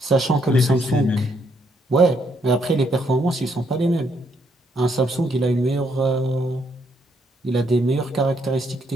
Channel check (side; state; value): both; normal; correlation 0.73